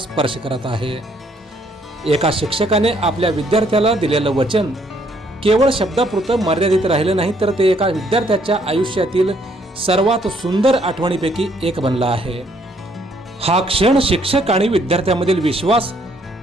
करत आहे। एका शिक्षकाने आपल्या विद्यार्थ्याला दिलेलं वचन केवळ शब्दापुरतं मर्यादित राहिलं नाही, तर ते एका विद्यार्थ्याच्या आयुष्यातील सर्वात सुंदर आठवणीपैकी एक बनला आहे। हा क्षण शिक्षक आणि विद्यार्थ्यामधील विश्वास,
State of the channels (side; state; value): both; normal; correlation 0.67